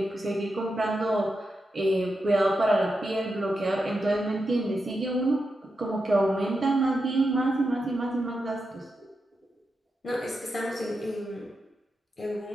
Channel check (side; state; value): both; normal; correlation 0.87